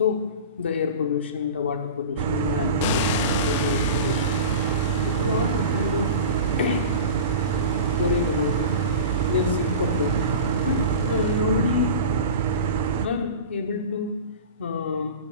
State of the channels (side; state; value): both; inverted; correlation -0.32